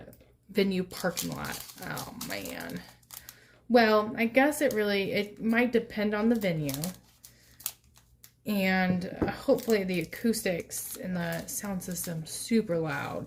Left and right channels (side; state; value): both; identical; correlation 1.00